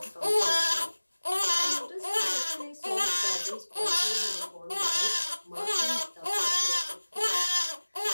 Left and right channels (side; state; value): both; inverted; correlation -1.00